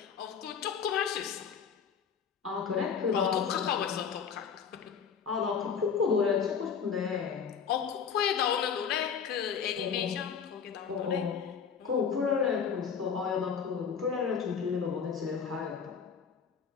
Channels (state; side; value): quieter; right; 6.7 dB